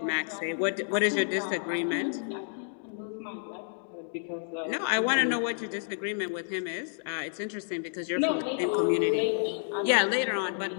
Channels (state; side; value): silent; right; digital silence